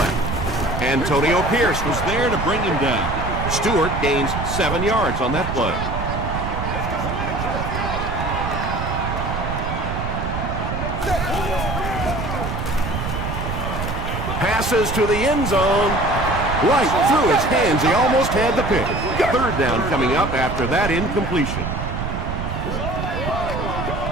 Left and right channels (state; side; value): noise; right; rumble, 4 dB below the sound